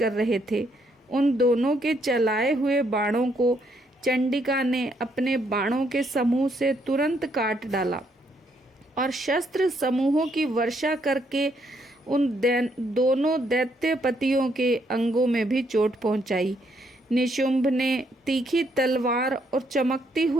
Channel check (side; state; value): both; normal; correlation 0.72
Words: रहे थे। उन दोनों के चलाए हुए बाणों को चंडिका ने अपने बाणों के समूह से तुरंत काट डाला और शस्त्र समूहों की वर्षा करके उन दोनों दैत्यपतियों के अंगों में भी चोट पहुंचाई। निशुंभ ने तीखी तलवार और चमकती